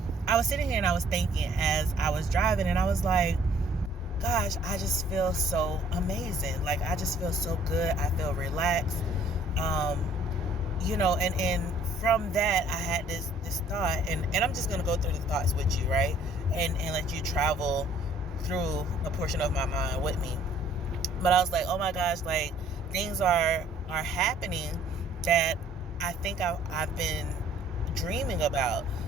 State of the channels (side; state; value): both; normal; correlation 0.58